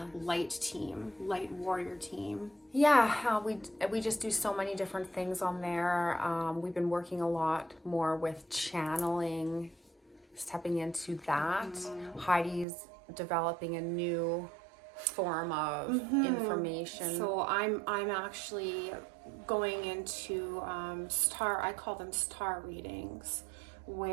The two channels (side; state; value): left; drops out; at 12.7 s